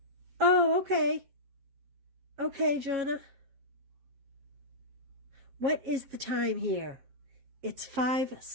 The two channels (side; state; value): left; late; 7.7 ms